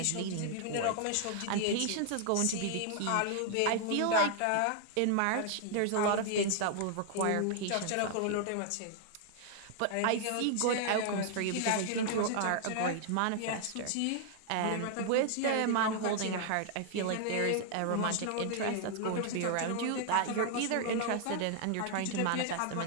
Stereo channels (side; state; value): both; different; correlation 0.00